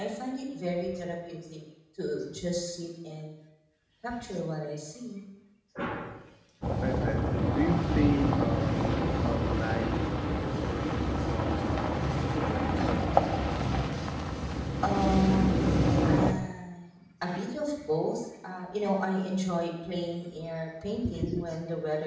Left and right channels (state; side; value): identical; both; correlation 1.00